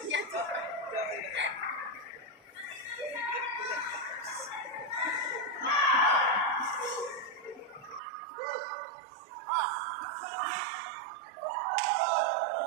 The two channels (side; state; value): left; drops out; at 8.0 s